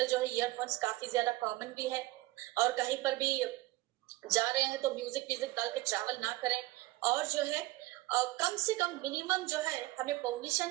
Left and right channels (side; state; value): left; quieter; 18.6 dB